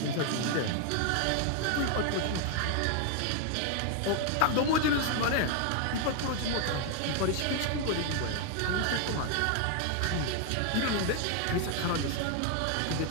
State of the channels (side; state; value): both; different; correlation 0.00